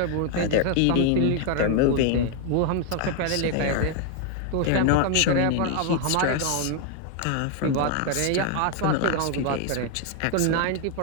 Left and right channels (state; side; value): different; both; correlation 0.01